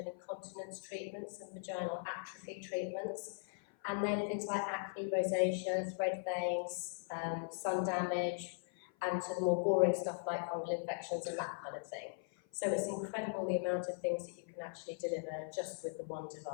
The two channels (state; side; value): silent; right; 51 dB below the other